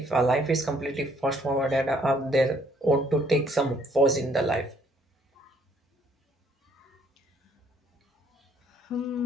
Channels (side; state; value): both; normal; correlation 0.64